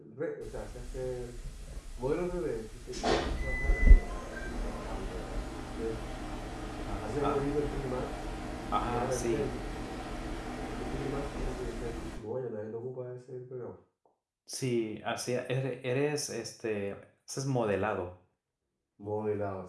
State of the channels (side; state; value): both; identical; correlation 1.00